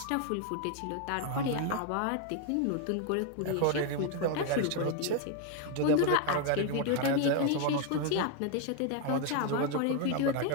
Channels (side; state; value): both; different; correlation 0.01